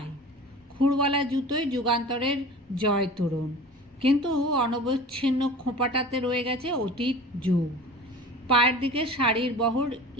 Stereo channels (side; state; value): both; normal; correlation 0.39